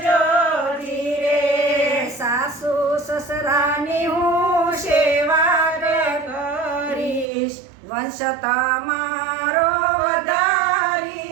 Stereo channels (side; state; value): left; drops out; at 7.3 s